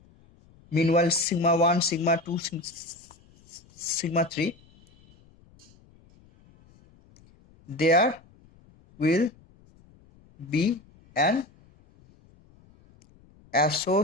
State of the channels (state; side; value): noise; left; rumble, 29 dB below the sound